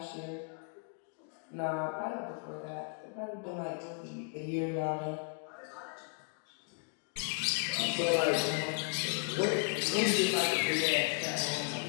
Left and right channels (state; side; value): quieter; right; 38.2 dB